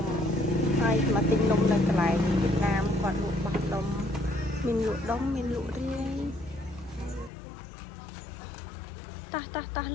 ំហើយមកទិញនំនៅកន្លែងវៀតណាមគាត់លក់បោះដុំមានលក់ដុំមានលក់រាយតោះ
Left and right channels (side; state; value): right; drops out; at 7.3 s